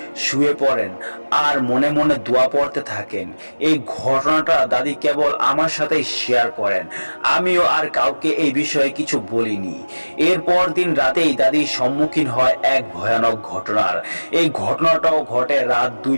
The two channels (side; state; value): both; inverted; correlation -1.00